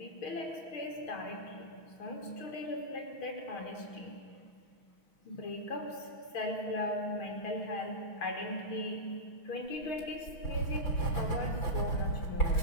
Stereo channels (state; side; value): late; right; 6.5 ms